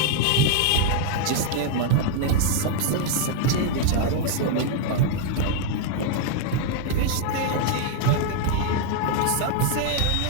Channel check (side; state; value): both; different; correlation 0.00